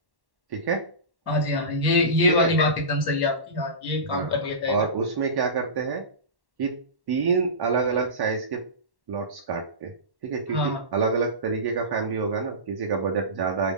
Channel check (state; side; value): late; left; 1.1 ms